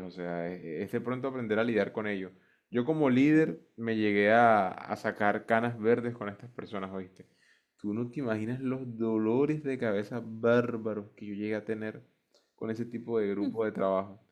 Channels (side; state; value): both; identical; correlation 1.00